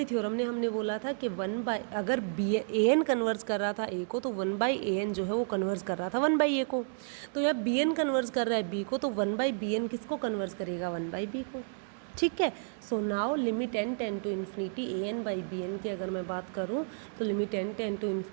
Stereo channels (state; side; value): silent; left; digital silence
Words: थ्योरम ने हमने बोला था कि अगर an कन्वर्स कर रहा था a को, तो 1/an जो है वो कन्वर्स कर रहा था 1/a को, तो यह bn कन्वर्स कर रहा है b को, तो 1/bn किसको कन्वर्स करेगा, 1/b को। ठीक है, so now limit n tend to infinity an/bn की अगर मैं बात करूँ तो limit n tend to